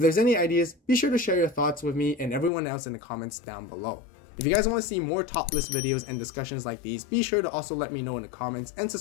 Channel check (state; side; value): drops out; right; at 2.5 s